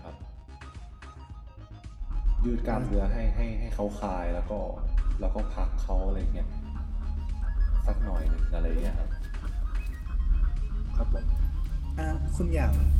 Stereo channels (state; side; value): identical; both; correlation 1.00